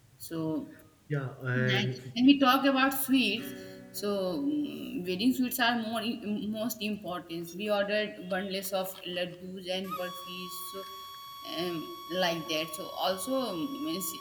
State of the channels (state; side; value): identical; both; correlation 1.00